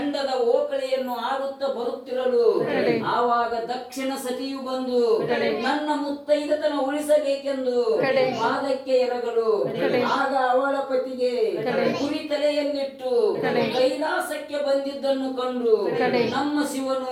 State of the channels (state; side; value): identical; both; correlation 1.00